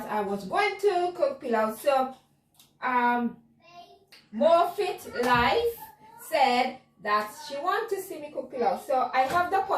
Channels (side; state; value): both; identical; correlation 1.00